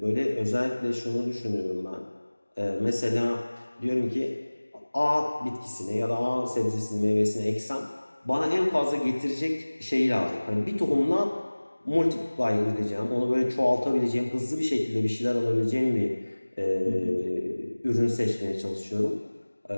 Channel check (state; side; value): inverted; both; correlation -1.00